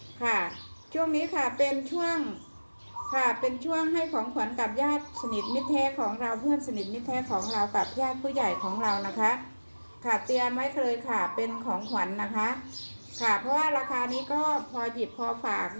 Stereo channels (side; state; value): both; inverted; correlation -1.00